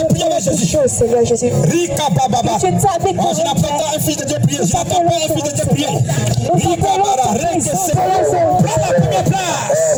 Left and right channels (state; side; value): identical; both; correlation 1.00